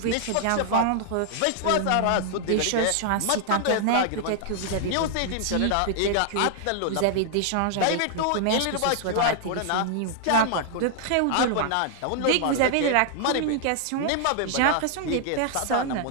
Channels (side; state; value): both; different; correlation 0.00